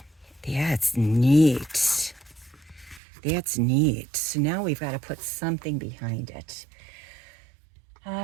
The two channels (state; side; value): drops out; left; at 3.0 s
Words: That's neat. That's neat. So now we've got to put something behind it.